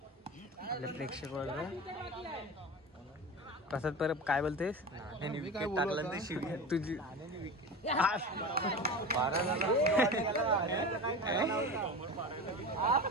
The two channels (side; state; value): both; normal; correlation 0.29